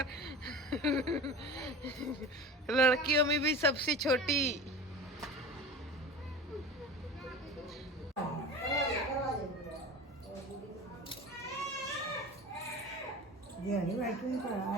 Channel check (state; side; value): normal; both; correlation 0.33